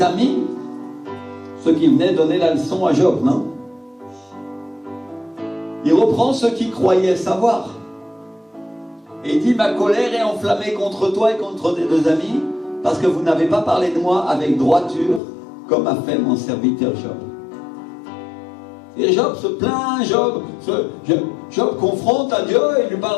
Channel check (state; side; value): drops out; right; at 15.2 s